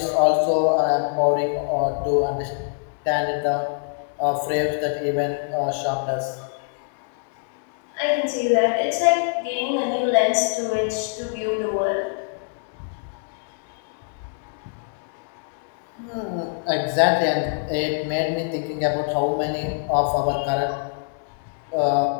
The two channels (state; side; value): silent; right; digital silence